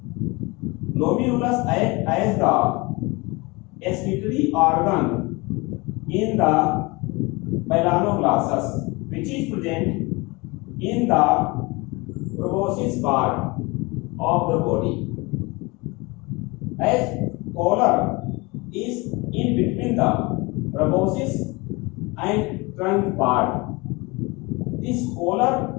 Glomerulus acts as the excretory organ in the Balanoglossus, which is present in the proboscis part of the body. As collar is in between the proboscis and trunk part, this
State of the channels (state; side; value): quieter; right; 25.3 dB